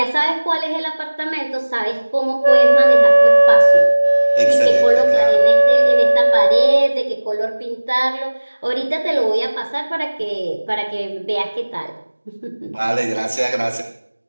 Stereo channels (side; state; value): both; inverted; correlation -1.00